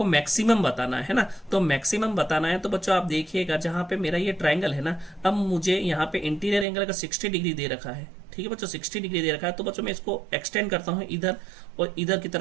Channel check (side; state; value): left; drops out; at 6.7 s